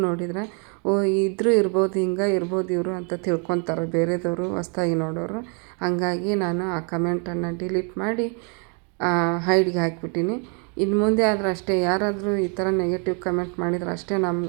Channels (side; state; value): left; quieter; 37.2 dB